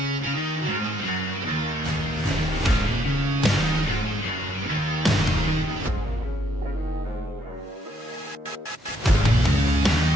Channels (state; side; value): normal; both; correlation 0.70